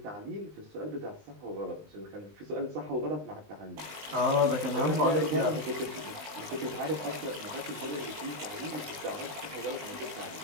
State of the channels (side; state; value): left; late; 20 ms